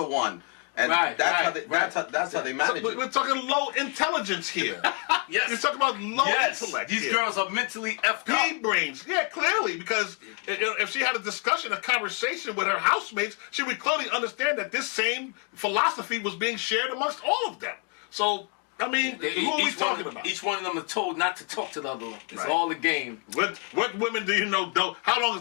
one. And that's how they manage it. We're talking low intelligence here. Yes. You're talking about low intellect. These girls are mentally effed up. Pea brains. Yeah, clearly, because if she had a discussion, a conversation with her housemates, she would clearly understand that this same philosophy was being shared amongst all of them. So, I mean, who are we talking about? Each one of them are told not to talk to the other one. It's all a game. What women do you know don't? How long is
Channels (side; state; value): right; quieter; 38.8 dB